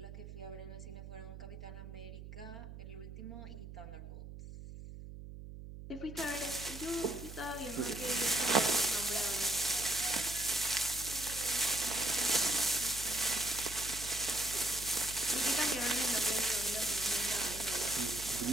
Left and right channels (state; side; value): noise; right; hum, 12 dB below the sound